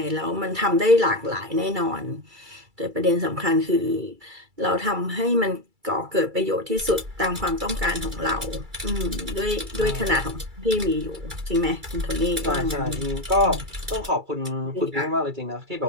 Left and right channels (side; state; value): left; late; 2.3 ms